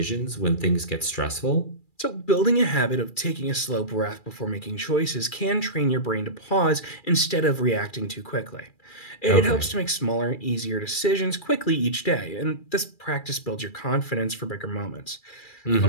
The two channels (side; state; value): right; late; 2.3 ms